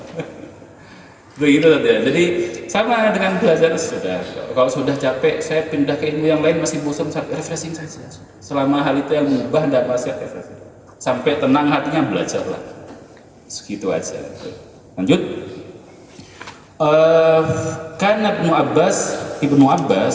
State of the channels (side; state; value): both; identical; correlation 1.00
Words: begitu saja. Jadi sama dengan belajar sudah. Kalau sudah capek, saya pindah ke ilmu yang lain, masih bosan, refreshing saja. Selama hal itu yang mengubah tidak masih refreshing. Sampai tenang hatinya, belajarlah. Segitu aja. Lanjut. Karena Ibnu